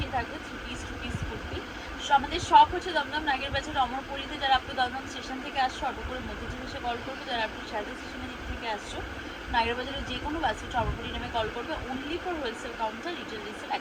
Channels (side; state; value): both; identical; correlation 1.00